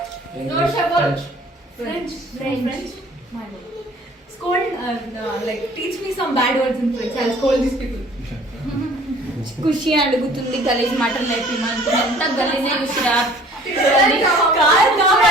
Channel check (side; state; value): both; normal; correlation 0.52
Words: French. Scold, like teach me some bad words in French. I'll scold these people. ఖుషి అడుగుతుంది గలీజ్ మాటలు నేర్పిమంటుంది. ఎంత గలీజే ఖుషిరా.